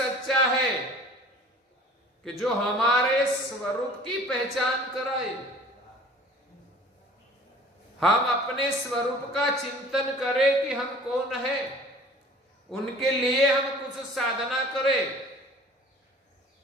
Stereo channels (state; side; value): normal; both; correlation 0.47